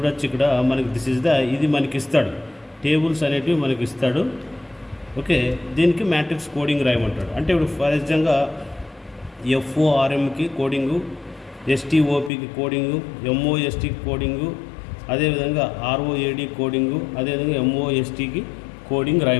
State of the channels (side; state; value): right; drops out; at 12.3 s